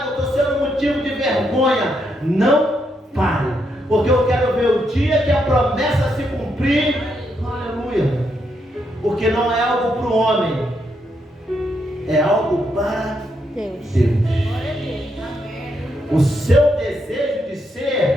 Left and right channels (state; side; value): normal; both; correlation 0.79